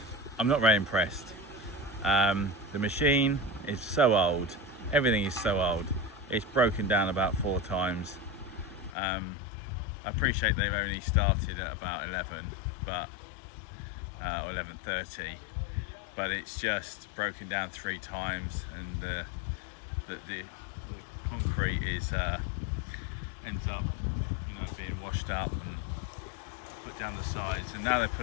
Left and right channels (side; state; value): right; drops out; at 8.9 s